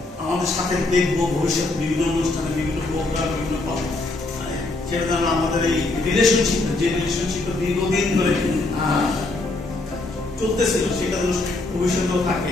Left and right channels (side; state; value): right; quieter; 3.1 dB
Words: আমাদের সাথে দেখবো ভবিষ্যতে বিভিন্ন অনুষ্ঠানে, বিভিন্ন প্রোগ্রাম বিভিন্ন পাবো, সেটা যেন আমাদের এই রিলেশনশিপ, যে রিলেশনশিপটা দীর্ঘদিন ধরে চলতেছিল, সেটা যেন ভবিষ্যতেও